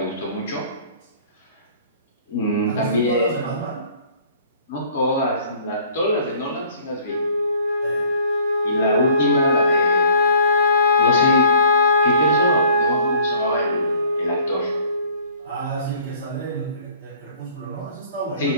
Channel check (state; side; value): inverted; both; correlation -0.54